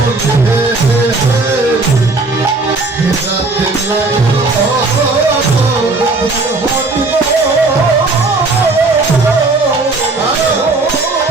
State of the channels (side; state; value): left; quieter; 3.5 dB